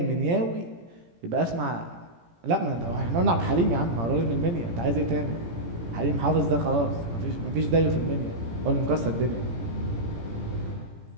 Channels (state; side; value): late; left; 17 ms